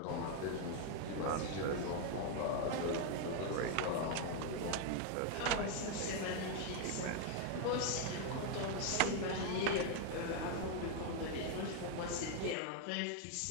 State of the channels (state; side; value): different; both; correlation 0.00